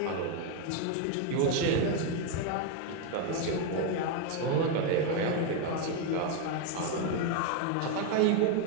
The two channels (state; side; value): different; both; correlation 0.02